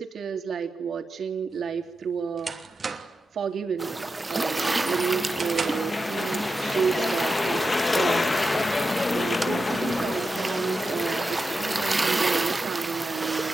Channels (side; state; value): both; normal; correlation 0.90